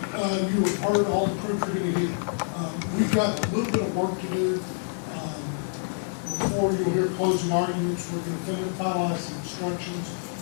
you have heard all the proof you're gonna hear. We've got a little bit of work to do. Before you'll hear closing arguments, we're gonna finalize the instructions,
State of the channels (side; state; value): right; silent; digital silence